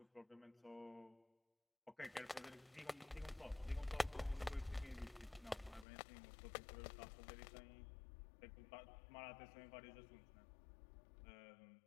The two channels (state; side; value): drops out; right; at 5.9 s